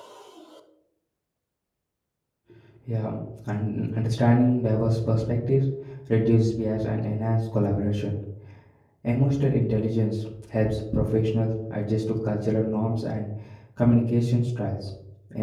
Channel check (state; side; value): identical; both; correlation 1.00